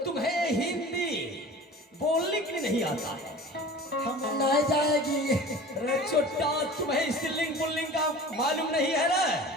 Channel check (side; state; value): both; normal; correlation 0.39